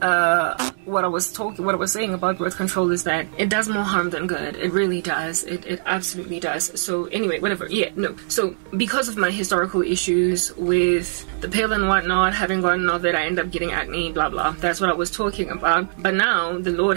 what I was saying about birth control is that it does more harm than good. It really does. It absolutely does. So anyway, whatever. Yeah, no. So because of my historical issues with the pill and whatnot, having gotten all that, I end up getting acne, blah blah. That's what I was talking about. But now the Lord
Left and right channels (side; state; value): left; silent; digital silence